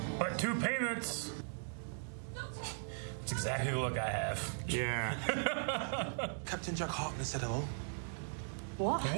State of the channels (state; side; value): silent; left; digital silence